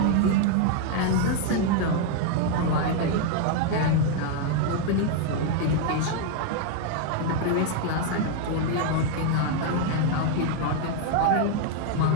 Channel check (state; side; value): different; both; correlation 0.00